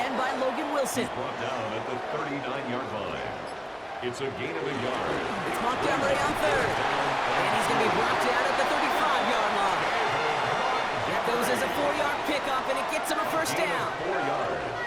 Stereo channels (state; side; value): identical; both; correlation 1.00